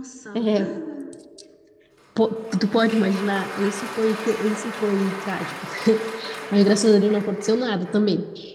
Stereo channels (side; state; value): both; identical; correlation 1.00